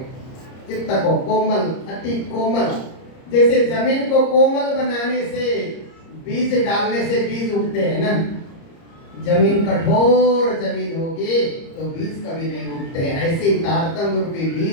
चित्त को कोमल, अति कोमल, जैसे जमीन को कोमल बनाने से, बीज डालने से बीज उगते हैं ना। जमीन कठोर जमीन होगी तो बीज कभी नहीं उगते हैं। ऐसे ही तारतम्य रूपी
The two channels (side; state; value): right; late; 30 ms